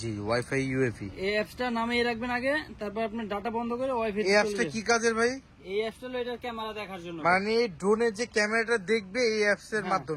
ওয়াইফাই ইউএভি, এই অ্যাপসটা নামিয়ে রাখবেন আগে, তারপর আপনার ডাটা বন্ধ করে ওয়াইফাই। এই অ্যাপসটা কি কাজের ভাই? এই অ্যাপসটা হলো এটার ক্যামেরা দেখার জন্য, মানে ড্রোনের যে ক্যামেরাটা দেখবে এই অ্যাপস এর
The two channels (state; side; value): identical; both; correlation 1.00